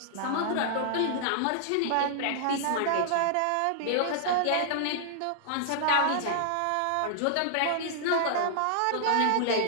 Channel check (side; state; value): both; different; correlation -0.01